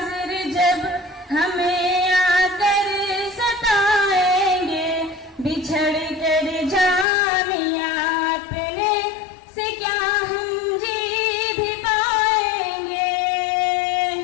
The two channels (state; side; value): drops out; right; at 7.1 s